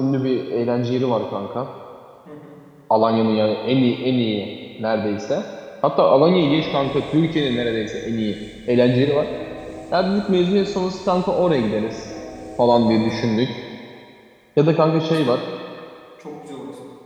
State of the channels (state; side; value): identical; both; correlation 1.00